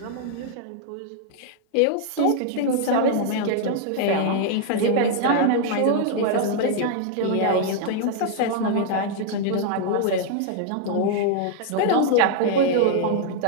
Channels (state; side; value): different; both; correlation 0.00